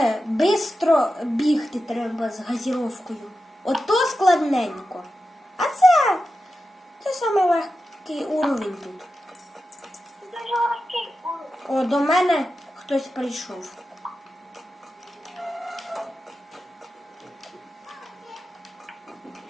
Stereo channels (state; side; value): normal; both; correlation 0.91